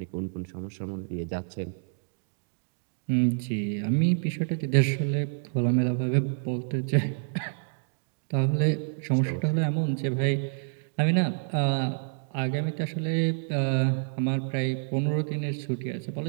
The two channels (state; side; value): silent; left; digital silence